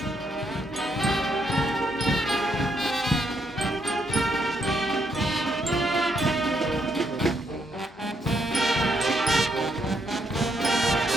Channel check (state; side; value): normal; both; correlation 0.76